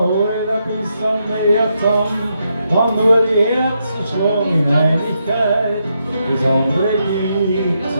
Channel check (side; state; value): both; inverted; correlation -0.81